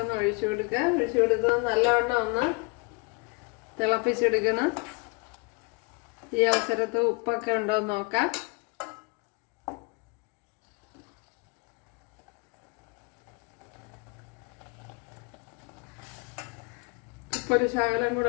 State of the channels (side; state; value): right; quieter; 31.0 dB